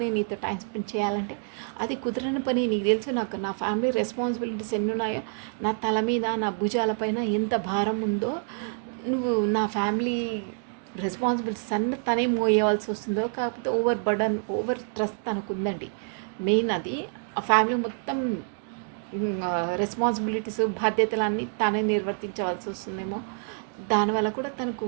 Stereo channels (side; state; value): left; silent; 55 dB below the other